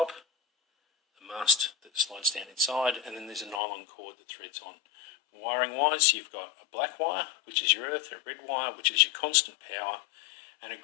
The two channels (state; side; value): drops out; right; at 3.6 s